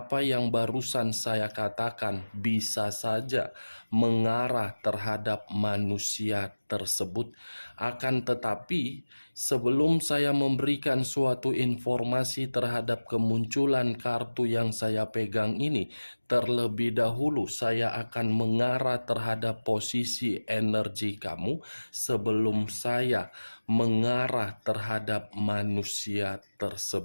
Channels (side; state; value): both; inverted; correlation -1.00